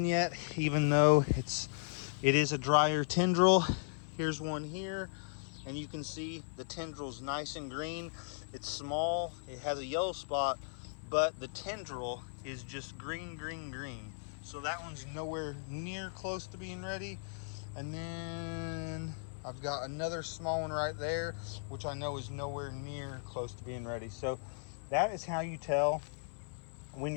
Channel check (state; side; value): silent; right; 53 dB below the other